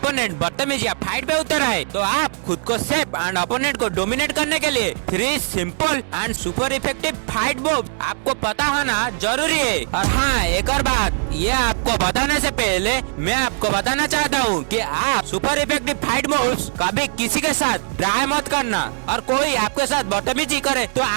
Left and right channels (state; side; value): silent; left; 65 dB below the other